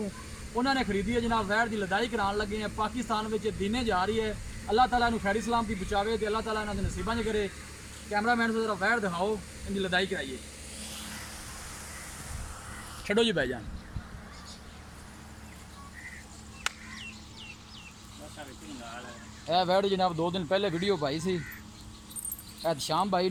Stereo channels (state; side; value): identical; both; correlation 1.00